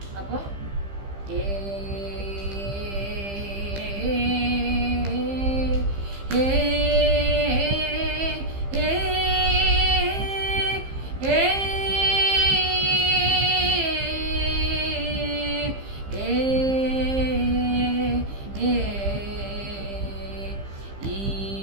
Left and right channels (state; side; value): late; left; 15 ms